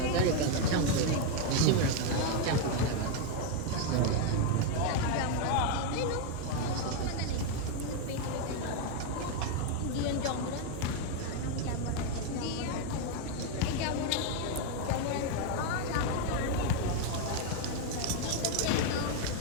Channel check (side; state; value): both; different; correlation 0.01